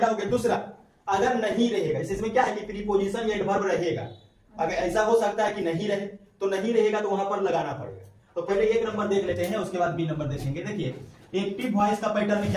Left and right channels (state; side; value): identical; both; correlation 1.00